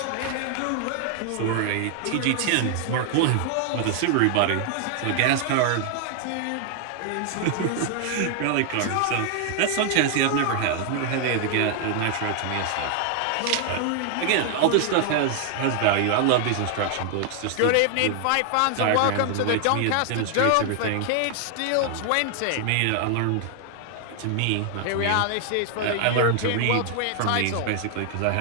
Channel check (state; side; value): different; both; correlation 0.00